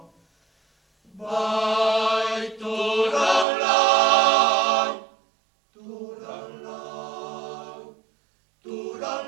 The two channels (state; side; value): drops out; left; at 3.5 s